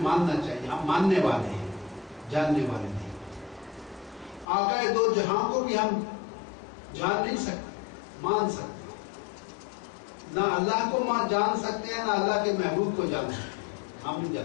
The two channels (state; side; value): drops out; right; at 4.5 s